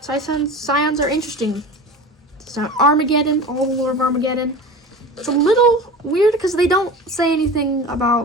Scions are interesting. So Armageddon, all the lore of Armageddon. It's a little weird because they don't say anything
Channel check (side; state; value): both; normal; correlation 0.35